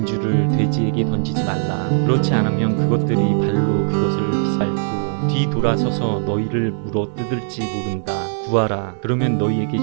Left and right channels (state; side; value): silent; left; digital silence